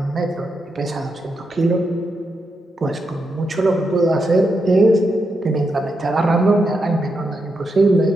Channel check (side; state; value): both; normal; correlation 0.84